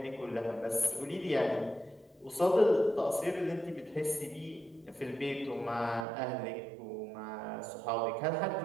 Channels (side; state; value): left; drops out; at 6.1 s